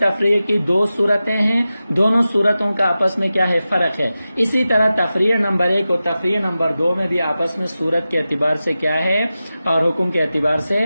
کی دو صورتیں ہیں، دونوں صورتوں کا آپس میں کیا ہے؟ فرق ہے۔ اسی طرح تفریق نمبر 1 اور تفریق نمبر 2 میں بھی آپس میں صورت کے اعتبار سے کیا ہے اور حکم کے اعتبار سے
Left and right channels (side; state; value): both; inverted; correlation -0.94